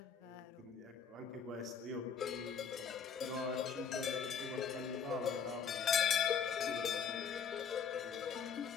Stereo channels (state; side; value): quieter; right; 6.7 dB